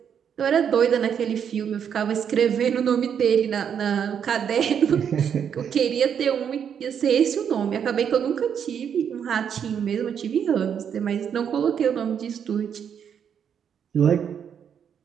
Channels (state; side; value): quieter; left; 8.0 dB